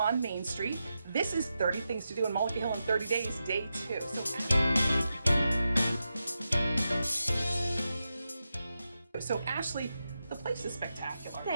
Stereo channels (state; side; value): inverted; both; correlation -0.89